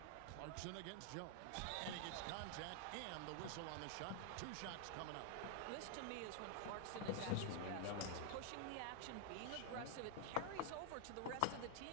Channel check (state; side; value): different; both; correlation 0.00